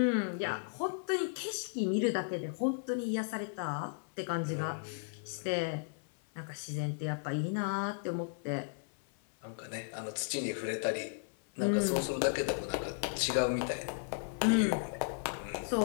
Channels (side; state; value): right; silent; 54 dB below the other